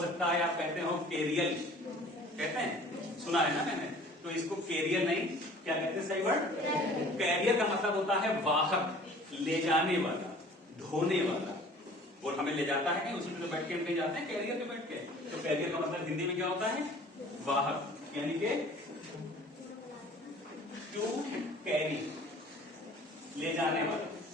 सकता है आप कहते हो केरियल, कहते हैं, सुना है ना मैंने। तो इसको केरियर नहीं, क्या कहते हैं सही वर्ड? कैरियर का मतलब होता है वाहक, ले जाने वाला, ढोने वाला। वो हमें ले जाता है, उसी में तो बैठ के हम कहीं जाते हैं कैरियर पे बैठ के। तो कैरियर का मतलब हिंदी में क्या होता है? वाहक, यानी कि टू कैरी, ले जाने वाला।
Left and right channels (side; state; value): both; normal; correlation 0.49